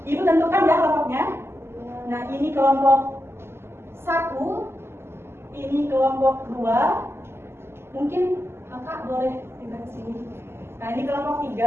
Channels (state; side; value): late; left; 0.12 ms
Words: Ibu tentukan ya kelompoknya. Nah, ini kelompok 1, ini kelompok 2. Mungkin Kakak boleh pindah ke sini. Nah, ini kelompok